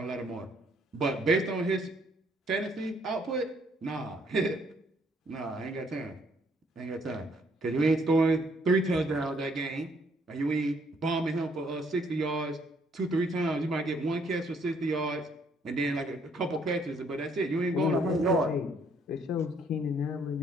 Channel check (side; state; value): both; normal; correlation 0.67